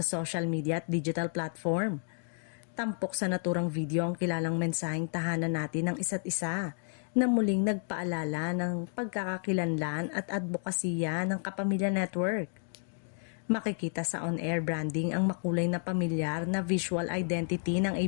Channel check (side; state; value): right; silent; 57 dB below the other